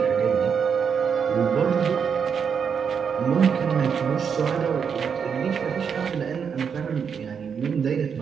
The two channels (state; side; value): quieter; left; 6.8 dB